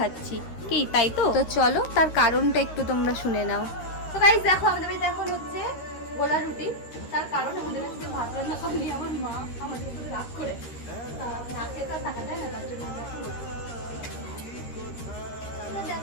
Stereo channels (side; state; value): right; late; 13 ms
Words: কি তাই তো? তো চলো তার কারণটা একটু তোমরা শুনে নাও। তো গাইস দেখো, আমাদের বাড়িতে এখন হচ্ছে গোলা রুটি। তার কারণ আমাদের বাড়িতে ভাত রান্না করেনি আমার মা, আমাদের উপরে রাগ করে না খেয়ে তো থাকা যায় না, তার জন্য